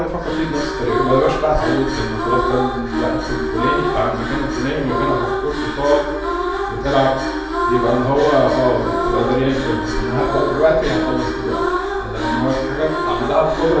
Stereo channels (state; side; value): identical; both; correlation 1.00